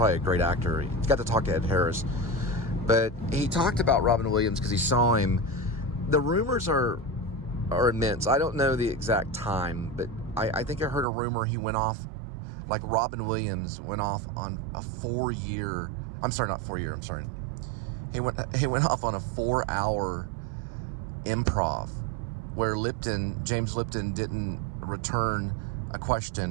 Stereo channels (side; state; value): left; drops out; at 11.1 s